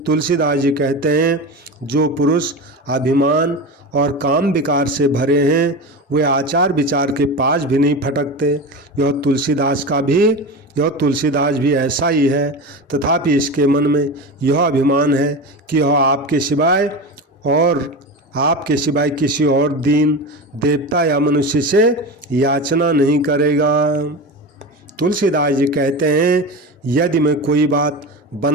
तुलसीदास जी कहते हैं जो पुरुष अभिमान और काम विकार से भरे हैं वे आचार विचार के पास भी नहीं फटकते। यह तुलसीदास भी ऐसा ही है, तथापि इसके मन में यह अभिमान है कि यह आपके सिवाय किसी और दीन देवता या मनुष्य से याचना नहीं करेगा। तुलसीदास जी कहते हैं यदि मैं कोई बात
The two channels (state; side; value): normal; both; correlation 0.25